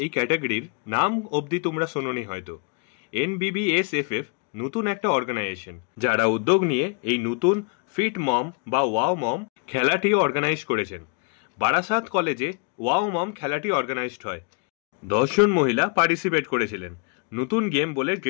এই ক্যাটাগরির নাম অবধি তোমরা শোনোনি হয়তো। NBBSFF নতুন একটা অর্গানাইজেশন যারা উদ্যোগ নিয়ে এই নতুন ফিট মম বা ওয়াও মম খেলাটি অর্গানাইজ করেছেন। বারাসাত কলেজে ওয়াও মম খেলাটি অর্গানাইজড হয়। 10 জন মহিলা পার্টিসিপেট করেছিলেন। নতুন গেম বলে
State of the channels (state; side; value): quieter; right; 35.4 dB